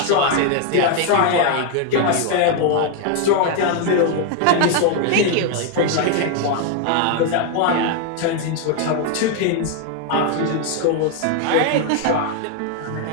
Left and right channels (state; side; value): different; both; correlation 0.01